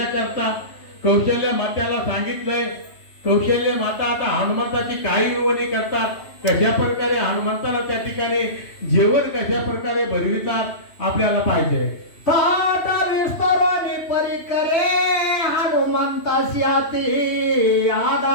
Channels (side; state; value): right; late; 2.9 ms